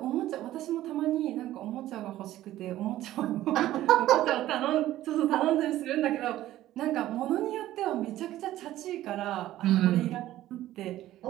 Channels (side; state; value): left; quieter; 14.3 dB